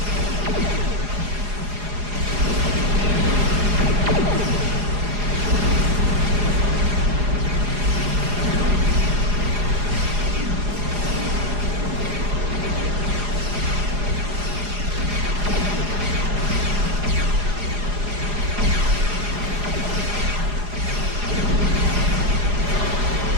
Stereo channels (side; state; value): left; late; 4.8 ms